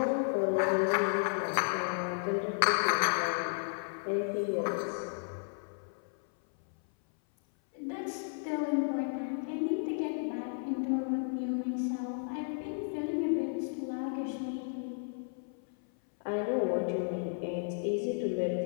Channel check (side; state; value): right; silent; 56 dB below the other